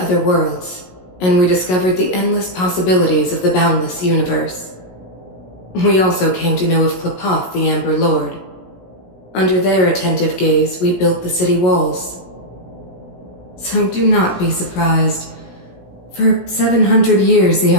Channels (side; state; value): right; late; 16 ms